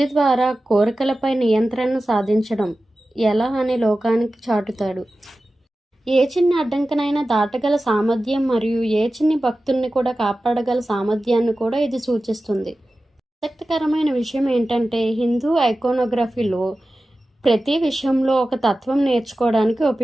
ద్వారా కోరికలపై నియంత్రణ సాధించడం ఎలా అని లోకానికి చాటుతాడు. ఏ చిన్న అడ్డంకినైనా దాటగల సామర్థ్యం మరియు ఏ చిన్ని భక్తుల్ని కూడా కాపాడగల సామర్థ్యాన్ని కూడా ఇది సూచిస్తుంది. ఆసక్తికరమైన విషయం ఏంటంటే, హిందూ ఐకోనోగ్రఫీలో ప్రతి విషయంలో ఒక తత్వం నేర్చుకోవడానికి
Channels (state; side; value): normal; both; correlation 0.95